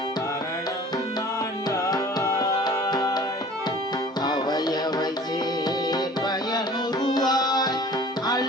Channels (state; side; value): normal; both; correlation 0.46